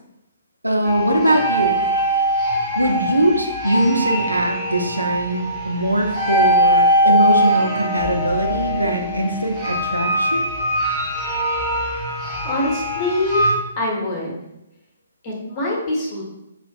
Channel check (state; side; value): inverted; both; correlation -0.50